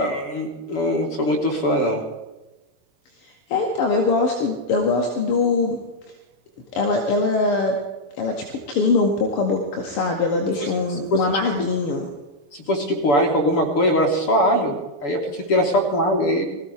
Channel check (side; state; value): right; late; 6.9 ms